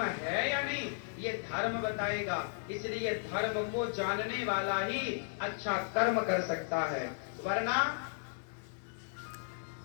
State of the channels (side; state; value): right; silent; digital silence